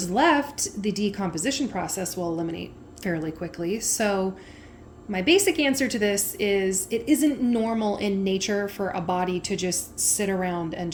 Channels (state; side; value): identical; both; correlation 1.00